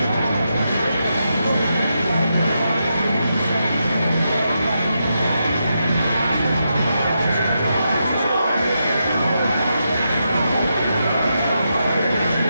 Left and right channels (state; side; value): inverted; both; correlation -0.85